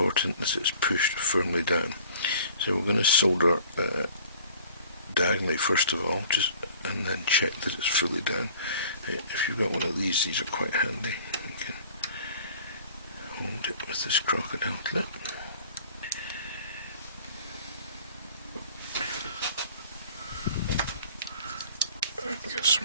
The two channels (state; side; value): inverted; both; correlation -0.50